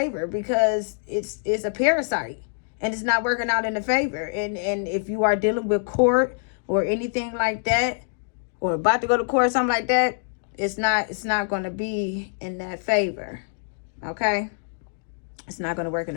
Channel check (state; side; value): silent; right; digital silence